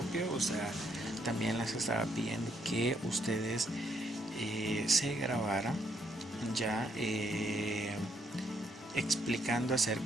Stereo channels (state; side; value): normal; both; correlation 0.72